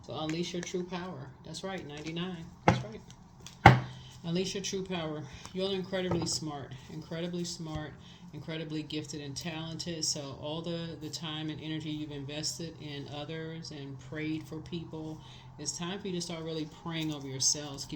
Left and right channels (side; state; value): both; identical; correlation 1.00